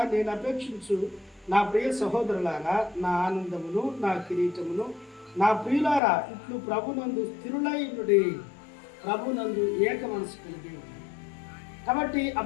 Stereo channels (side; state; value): right; drops out; at 6.0 s